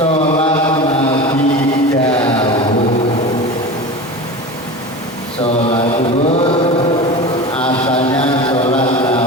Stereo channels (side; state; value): both; normal; correlation 0.30